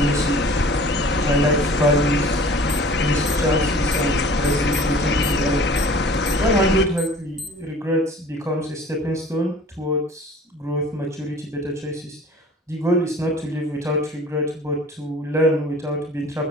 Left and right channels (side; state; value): both; normal; correlation 0.46